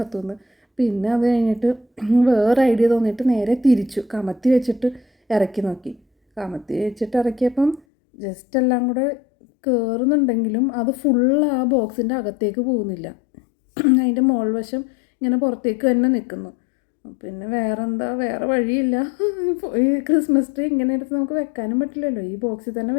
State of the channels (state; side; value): drops out; right; at 7.8 s